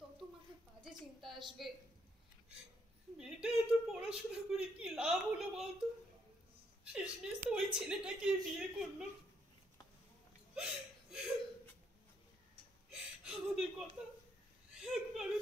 তত মাথায় বাজে চিন্তা আসবে। মেয়েটা এত পড়াশোনা করে কি লাভ হলো বলতো? শেষমেশ তো ওই ছেলেটাকে বিয়ে করলো। আমাদের কথা একবারও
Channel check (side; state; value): both; normal; correlation 0.74